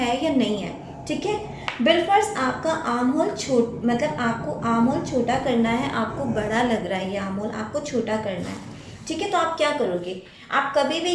या नहीं है। ठीक है, बिलफर्ज आपका आर्म होल मतलब आपको आर्म होल छोटा करना है, आपको बड़ा लग रहा है ये आर्म होल, आपको छोटा करना है। ठीक है, तो आप क्या करोगे, आप कभी भी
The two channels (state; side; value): identical; both; correlation 1.00